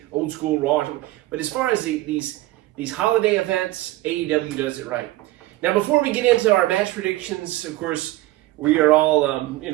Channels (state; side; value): quieter; left; 17.2 dB